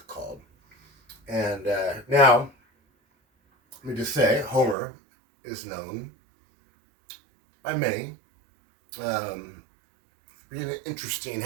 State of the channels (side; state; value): left; drops out; at 4.8 s